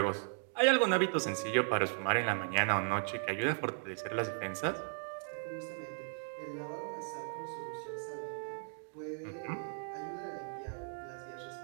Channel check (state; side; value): silent; left; 53 dB below the other